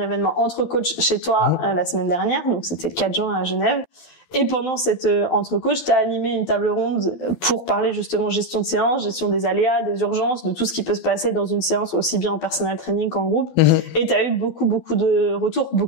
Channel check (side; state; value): right; late; 12 ms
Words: événement entre coachs chez toi la semaine dernière, donc c'était le 4 juin à Genève. Et pendant cette entre-coach, tu as animé une table ronde pour parler justement gestion de séance, gestion des aléas, des urgences, de tout ce qui peut se passer dans une séance, aussi bien en personal training qu'en groupe. Et tu as eu beaucoup de retours,